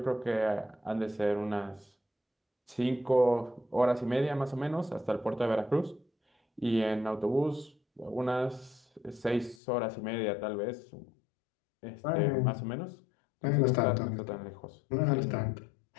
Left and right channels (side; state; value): right; drops out; at 9.6 s